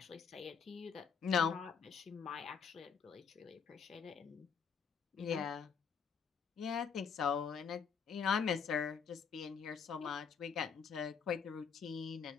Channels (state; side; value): quieter; right; 6.5 dB